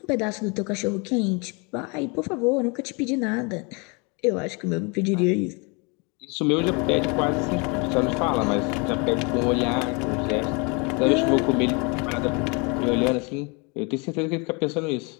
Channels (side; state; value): right; quieter; 30.9 dB